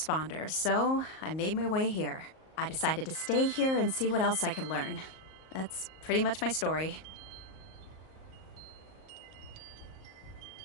so I made my way here. I decided to stay here and see what else I could learn. That's pretty much my story.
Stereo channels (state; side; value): late; right; 38 ms